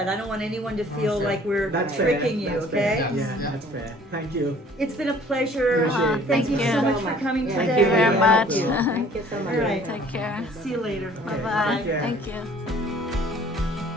I don't want anyone to feel like we're That's fair. tricking you, That's okay? fair. Yeah, that's fair. Thank you. It's been a pleasure. Appreciate it. Thank you Thank so you. much for coming Yeah. today. Thank you very much. Thank you so much. All right. Take care. See you later. Bye bye. care. Thank you.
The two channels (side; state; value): both; normal; correlation 0.54